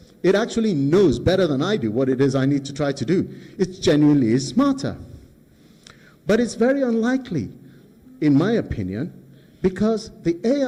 It actually knows better than I do what it is I need to try to do. It genuinely is smarter. But it's very unlikely, in my opinion, because the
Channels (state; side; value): identical; both; correlation 1.00